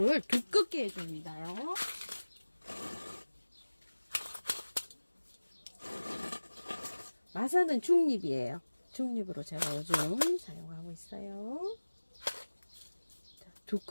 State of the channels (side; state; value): both; inverted; correlation -1.00